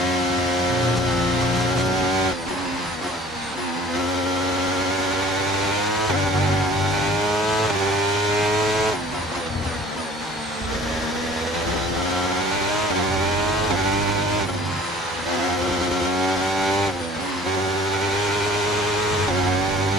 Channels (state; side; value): normal; both; correlation 0.50